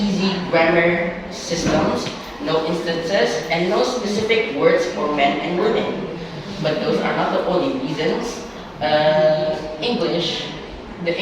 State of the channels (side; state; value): both; identical; correlation 1.00